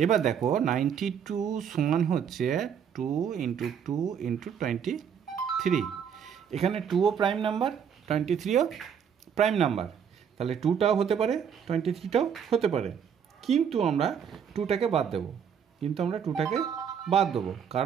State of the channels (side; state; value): left; quieter; 7.8 dB